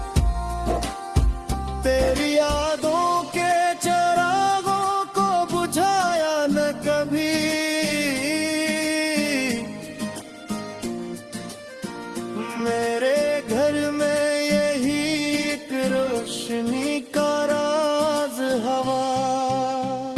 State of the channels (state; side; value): identical; both; correlation 1.00